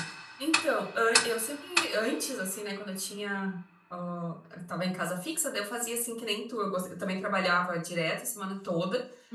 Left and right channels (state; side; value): identical; both; correlation 1.00